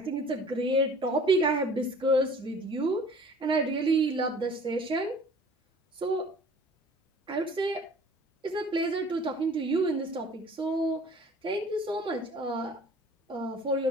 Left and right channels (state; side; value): normal; both; correlation 0.48